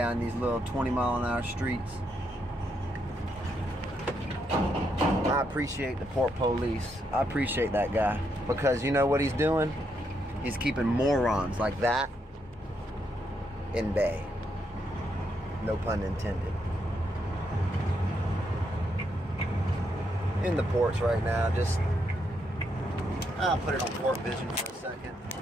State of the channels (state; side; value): normal; both; correlation 0.78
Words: these little 20-mile-an-hour streets. I appreciate the Port Police. I appreciate that guy. Because you know what he's doing? He's keeping morons like that in bay. No pun intended. In the ports right now, just I'll put it on Port Vision for a second.